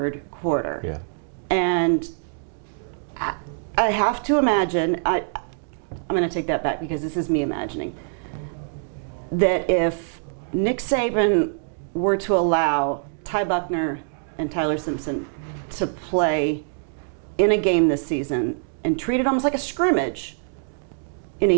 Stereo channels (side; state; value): left; silent; digital silence